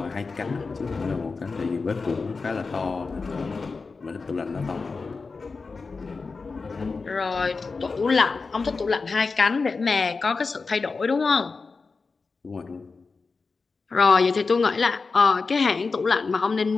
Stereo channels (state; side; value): quieter; right; 4.3 dB